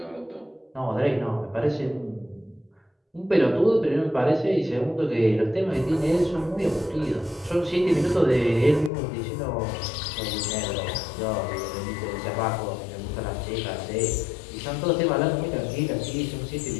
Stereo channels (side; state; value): right; drops out; at 8.9 s